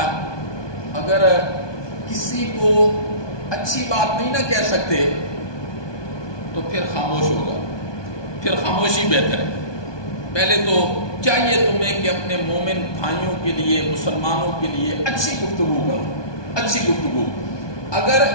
اگر کسی کو اچھی بات نہیں نہ کہہ سکتے تو پھر خاموش ہوگا، پھر خاموشی بہتر ہے. پہلے تو چاہیے تمہیں کہ اپنے مومن بھائیوں کے لیے، مسلمانوں کے لیے اچھی گفتگو کرو، اچھی گفتگو. اگر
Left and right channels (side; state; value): right; late; 1.2 ms